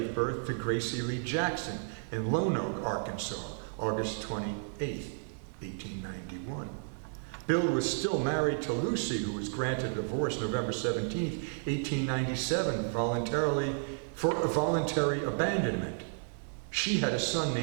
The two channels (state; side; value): silent; left; digital silence